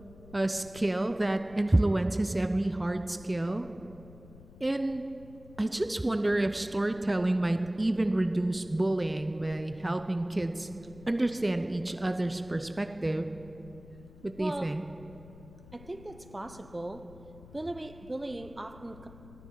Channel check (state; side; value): noise; left; rumble, 19 dB below the sound